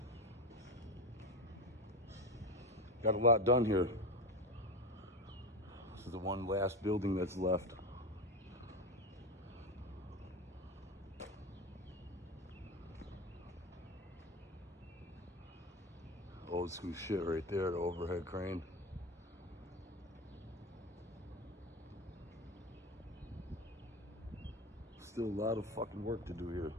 Got a lot done here. This is the one last building that's left. Old school shit right there, the overhead crane. Still a lot of fucking work to do here.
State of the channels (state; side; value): normal; both; correlation 0.21